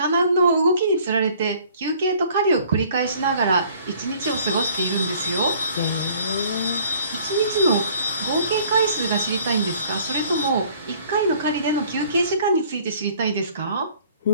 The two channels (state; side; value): inverted; both; correlation -0.56